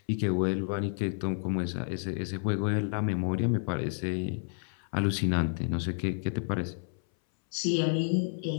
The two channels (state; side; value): silent; right; 58 dB below the other